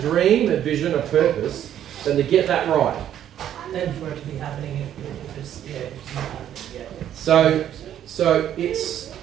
a vision, a purpose, than to get that right. Then for it to be happening, if it's not happening, So it's,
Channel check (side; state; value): left; quieter; 10.7 dB